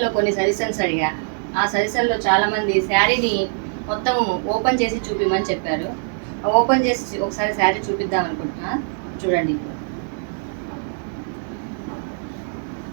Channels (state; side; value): silent; left; digital silence